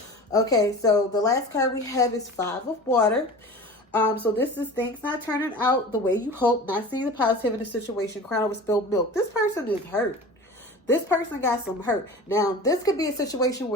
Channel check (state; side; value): normal; both; correlation 0.36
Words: Okay, so the last card we have is 5 of Water. So this is things not turning out the way you hope, not seeing the positive in the situation, crying over spilled milk. This person is hurt. This person got some hurt. Now, this could be a situation